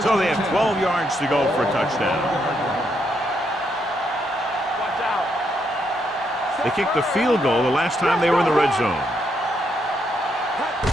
So they have 12 yards to go for a touchdown. Watch out. They kicked the field goal the last time they were in the red zone.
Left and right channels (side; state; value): both; normal; correlation 0.77